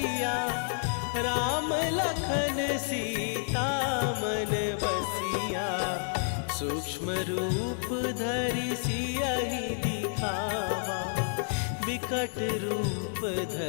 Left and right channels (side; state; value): right; silent; 58 dB below the other